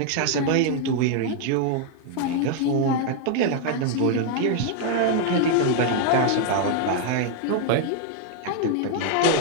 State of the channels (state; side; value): different; both; correlation 0.00